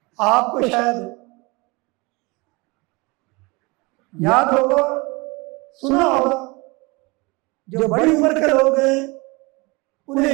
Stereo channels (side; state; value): left; quieter; 25.9 dB